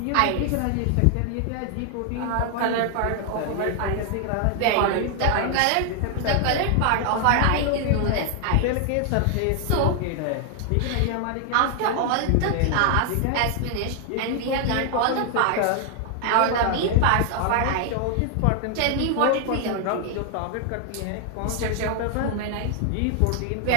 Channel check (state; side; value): different; both; correlation 0.00